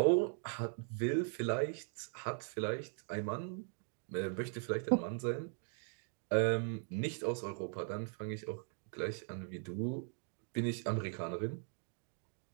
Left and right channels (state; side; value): silent; left; 51 dB below the other